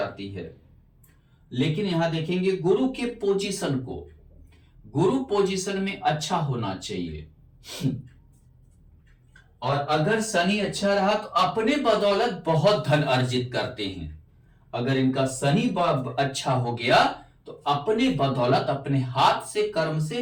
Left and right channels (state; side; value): identical; both; correlation 1.00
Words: है। लेकिन यहां देखेंगे गुरु के पोजीशन को, गुरु पोजीशन में अच्छा होना चाहिए। और अगर शनि अच्छा रहा तो अपने बदौलत बहुत धन अर्जित करते हैं। अगर इनका शनि अच्छा हो गया तो अपने बदौलत, अपने हाथ से, कर्म